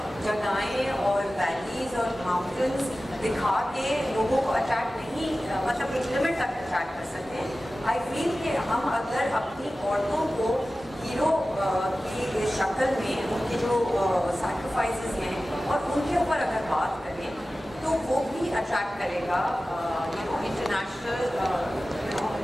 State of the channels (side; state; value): both; normal; correlation 0.96